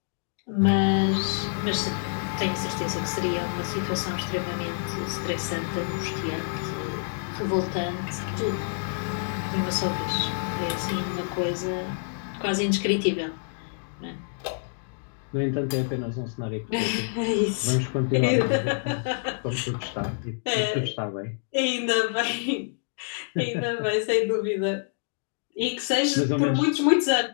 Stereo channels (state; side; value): silent; right; digital silence